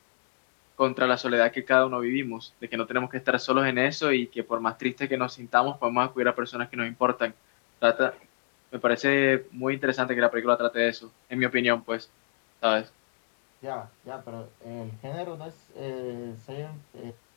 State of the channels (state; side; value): silent; right; digital silence